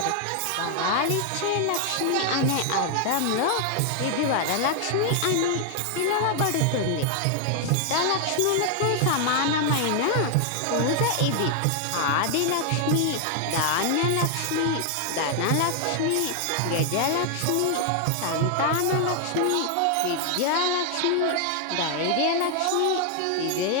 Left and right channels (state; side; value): different; both; correlation 0.00